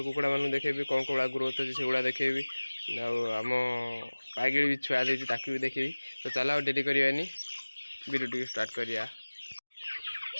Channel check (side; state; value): both; inverted; correlation -1.00